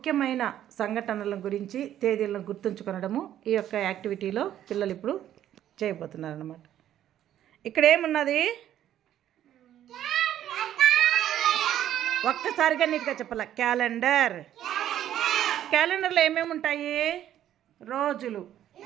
సంఘటనల గురించి తేదీలను గుర్తుంచుకొనడము ఈ యొక్క యాక్టివిటీలో పిల్లలు ఇప్పుడు చేయబోతున్నారు అన్నమాట. ఇక్కడ ఏమున్నది? ఒక్కసారిగా నీట్గా చెప్పాల. క్యాలెండర్. క్యాలెండర్లో ఏమేమి ఉంటాయి? రోజులు.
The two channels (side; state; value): left; quieter; 11.5 dB